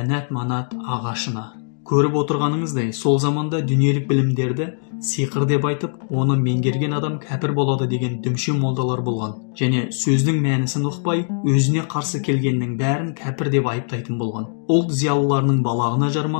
манат ағашына. Көріп отырғаныңыздай, сол заманда дүниелік білімдерді сиқыр деп айтып, оны меңгерген адам кәпір болады деген дүмше молдалар болған. Және сөздің мәнісін ұқпай, өзіне қарсы келгеннің бәрін кәпір деп айыптайтын болған. Ұлт зиялыларының балағына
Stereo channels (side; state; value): right; silent; digital silence